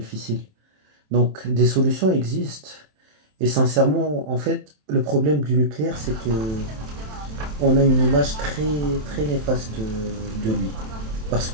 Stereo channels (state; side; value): late; left; 27 ms